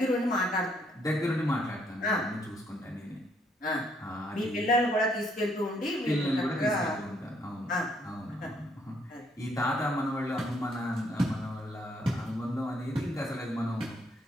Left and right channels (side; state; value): both; normal; correlation 0.70